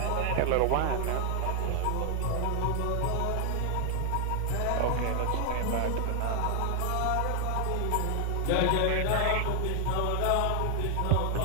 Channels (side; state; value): both; different; correlation 0.00